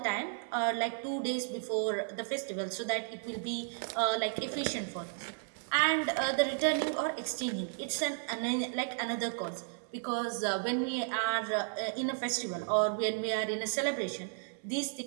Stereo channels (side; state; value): left; silent; 55 dB below the other